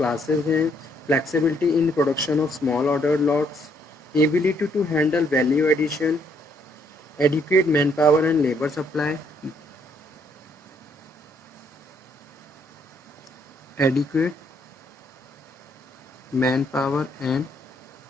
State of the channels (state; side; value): normal; both; correlation 0.70